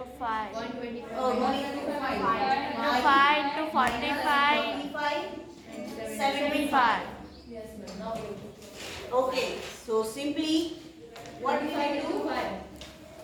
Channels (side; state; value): both; identical; correlation 1.00